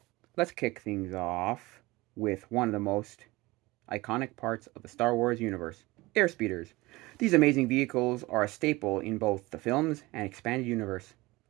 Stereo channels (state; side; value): quieter; left; 21.1 dB